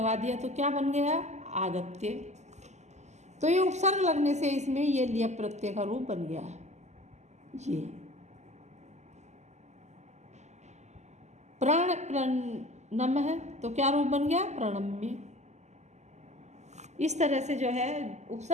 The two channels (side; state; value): left; late; 0.33 ms